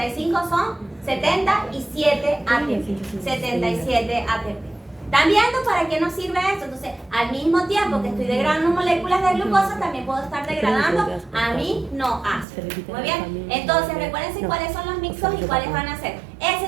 son 77 ATP. 77 ATP. ¿Están viendo para qué nos sirve esto? Entonces, al mismo tiempo que estoy degradando moléculas de glucosa, también puedo estar degradando aminoácidos. Muy bien. Entonces, recuérdense cuáles son los mixtos y cuáles van a ser.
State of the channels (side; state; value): left; drops out; at 12.5 s